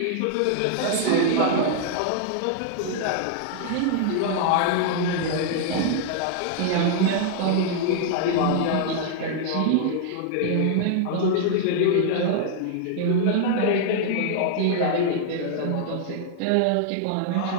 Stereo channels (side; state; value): both; different; correlation -0.01